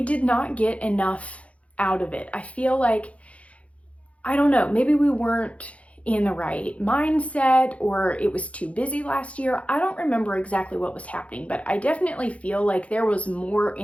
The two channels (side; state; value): right; late; 0.064 ms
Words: did not get enough out of it. I feel like, I don't know, maybe we weren't in the right mindset or it was too busy last year. I don't remember exactly what was happening, but I definitely feel like there was more